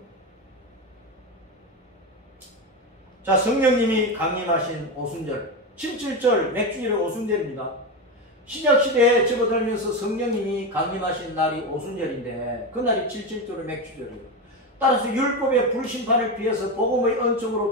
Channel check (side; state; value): both; normal; correlation 0.16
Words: 자, 성령님이 강림하신 오순절, 7.7절 맥주일의 오순절입니다. 신약시대에 접어들면서 성령님이 강림하신 날이 오순절인데 그날이 7.7절의 맥주절이에요. 따라서 율법의 불심판을 피해서 복음의